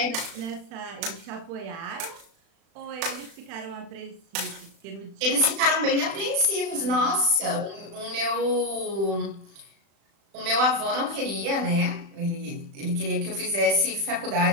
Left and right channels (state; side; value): late; left; 36 ms